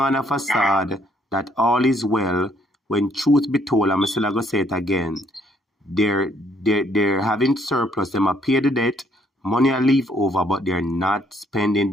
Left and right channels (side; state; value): both; normal; correlation 0.67